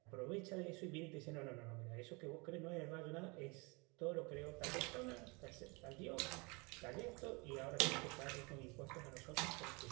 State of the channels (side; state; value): left; quieter; 28.5 dB